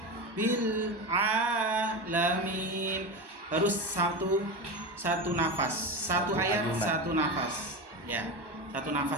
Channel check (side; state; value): left; late; 1.1 ms